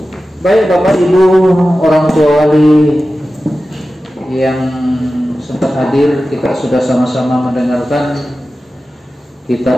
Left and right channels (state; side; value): normal; both; correlation 0.94